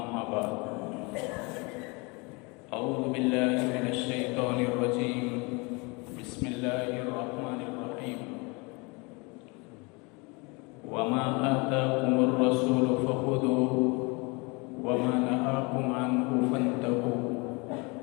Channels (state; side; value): quieter; right; 28.5 dB